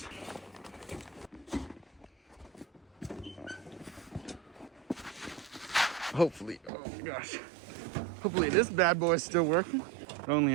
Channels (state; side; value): drops out; left; at 6.7 s